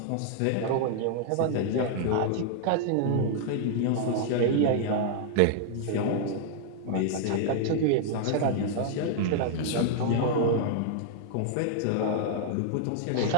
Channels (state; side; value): different; both; correlation -0.01